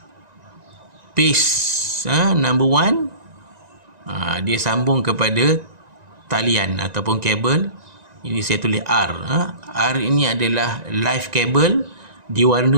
phase number 1. Dia sambung kepada talian ataupun kabel. Ini saya tulis R. R ini adalah live kabel,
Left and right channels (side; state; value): left; late; 1.9 ms